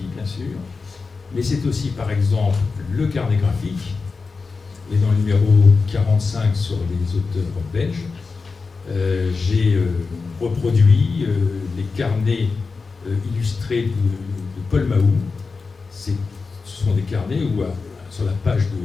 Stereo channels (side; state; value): right; quieter; 4.4 dB